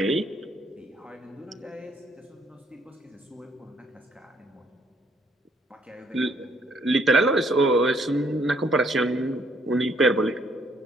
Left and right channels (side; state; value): both; normal; correlation 0.67